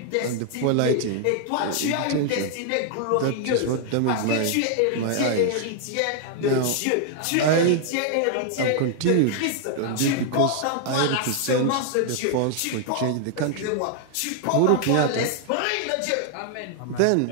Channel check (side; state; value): both; different; correlation 0.00